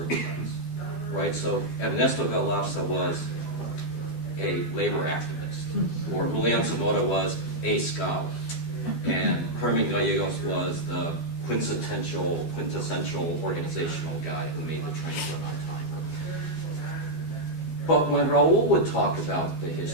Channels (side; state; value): right; late; 12 ms